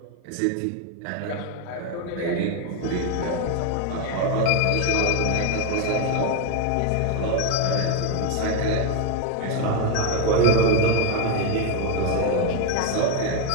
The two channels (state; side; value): different; both; correlation 0.02